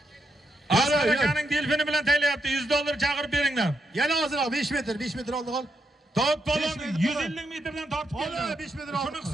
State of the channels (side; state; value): both; normal; correlation 0.81